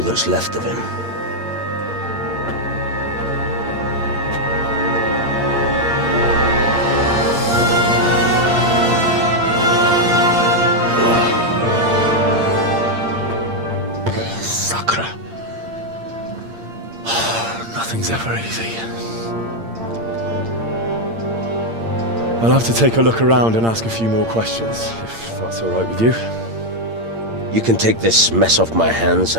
that's left of him. Sacre. Nothing's ever easy. I'll have to take a look around and ask a few more questions, if that's all right with you. You can take this mess off my hands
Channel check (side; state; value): left; late; 8.7 ms